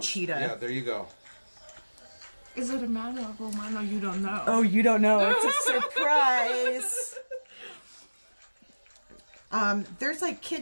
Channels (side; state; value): both; inverted; correlation -1.00